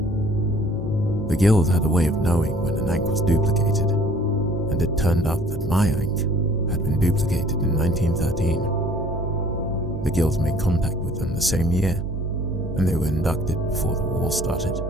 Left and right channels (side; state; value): both; normal; correlation 0.54